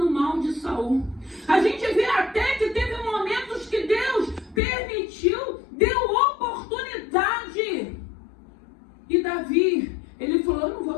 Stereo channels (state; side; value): drops out; right; at 4.6 s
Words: o mal de Saul. A gente vê até que teve momentos que Deus permitiu, deu oportunidade. E Davi, ele falou, eu não vou